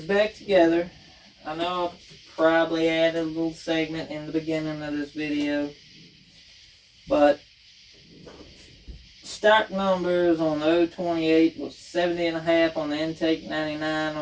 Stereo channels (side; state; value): both; identical; correlation 1.00